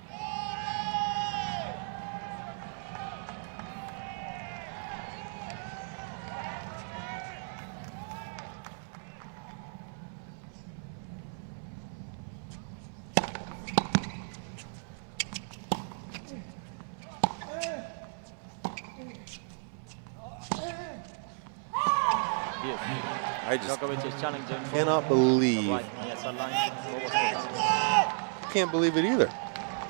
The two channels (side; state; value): left; silent; 55 dB below the other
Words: I just Djokovic is challenging. cannot believe. Right, yes, line. What was called? Can't believe it either.